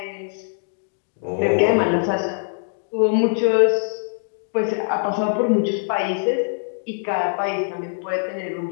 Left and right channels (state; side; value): silent; right; digital silence